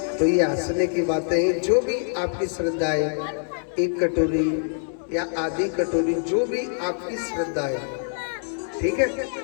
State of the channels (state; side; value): silent; right; digital silence